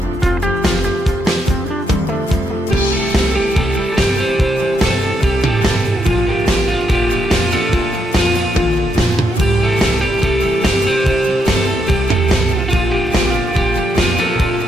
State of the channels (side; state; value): both; normal; correlation 0.79